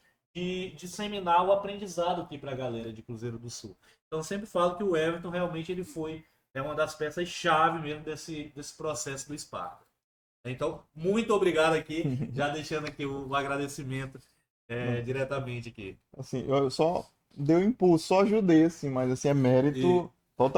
de disseminar o aprendizado aqui para a galera de Cruzeiro do Sul. Então eu sempre falo que o Everton realmente ele foi uma das peças-chave mesmo desse processo do Sparta. Então, muito obrigado aqui, já deixando aqui o agradecimento diretamente aqui. Assim, eu só dei um impulso, só ajudei, assim, mas assim, é mérito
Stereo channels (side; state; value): both; identical; correlation 1.00